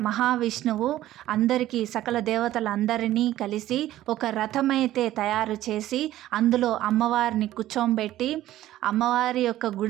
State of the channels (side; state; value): left; quieter; 14.1 dB